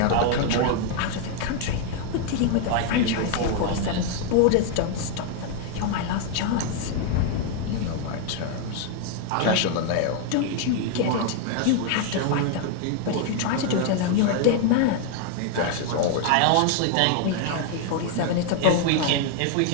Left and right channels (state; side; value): different; both; correlation 0.00